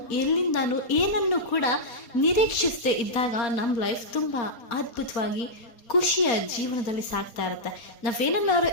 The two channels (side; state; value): right; late; 4.2 ms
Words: ಎಲ್ಲಿಂದಾನು ಏನನ್ನು ಕೂಡ ನಿರೀಕ್ಷಿಸದೆ ಇದ್ದಾಗ ನಮ್ಮ ಲೈಫ್ ತುಂಬಾ ಅದ್ಭುತವಾಗಿ ಖುಷಿಯ ಜೀವನದಲ್ಲಿ ಸಾಗ್ತಾ ಇರುತ್ತೆ. ನಾವೇನನ್ನಾರು